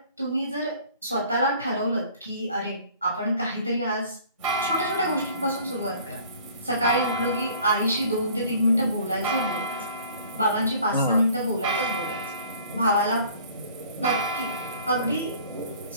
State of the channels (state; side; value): inverted; both; correlation -0.52